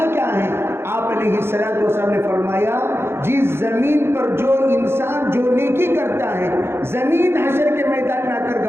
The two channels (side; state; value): left; late; 0.12 ms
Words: کیا ہے، آپ علیہ السلام نے فرمایا جس زمین پر جو انسان جو نیکی کرتا ہے زمین حشر کے میدان میں آ کر